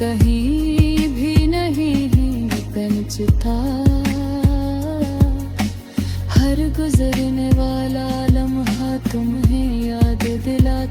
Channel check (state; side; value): identical; both; correlation 1.00